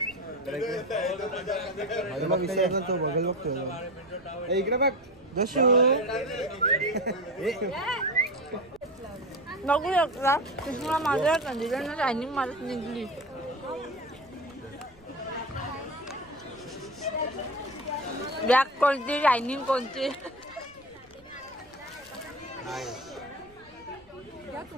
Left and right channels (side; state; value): right; noise; rumble, 27 dB below the sound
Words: तो बघल बघतो. इकडे बघ जशू. बघू शकता कृष्णा माझ्या कंदिलांना टायमिंग मारत निघली. ब्लॅक कोणती शायनिंग कोणती.